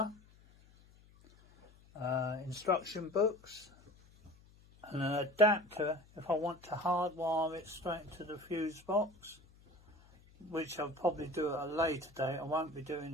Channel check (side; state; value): left; noise; hum, 26 dB below the sound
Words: instruction books, and an adapter if I want to hardwire it straight to the fuse box, which I'll probably do at a later date. I won't be doing